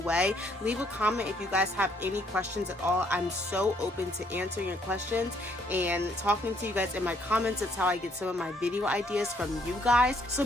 Leave a comment if you guys have any questions at all. I'm so open to answering your questions and talking to you guys in my comments. That's how I get some of my video ideas from you guys, so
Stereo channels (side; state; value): both; normal; correlation 0.68